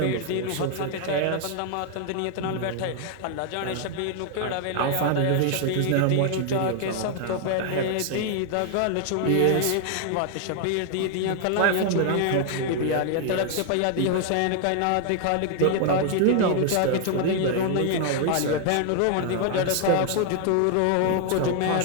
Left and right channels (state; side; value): different; both; correlation 0.00